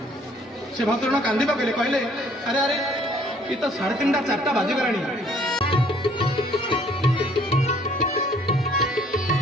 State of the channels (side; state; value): both; normal; correlation 0.60